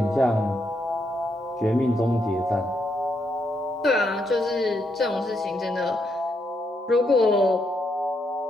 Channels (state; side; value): normal; both; correlation 0.79